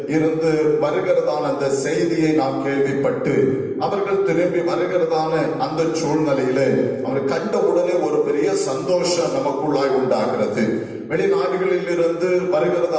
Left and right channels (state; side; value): identical; both; correlation 1.00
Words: இருந்து வருகிறதான அந்த செய்தியை நாம் கேள்விப்பட்டு அவர்கள் திரும்பி வருகிறதான அந்த சூழ்நிலையில அவர் கண்ட உடனே ஒரு பெரிய சந்தோஷம் நமக்குள்ளாய் உண்டாகிறது. வெளிநாடுகளில் இருந்து